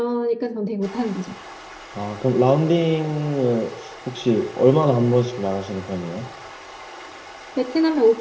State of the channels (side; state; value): both; identical; correlation 1.00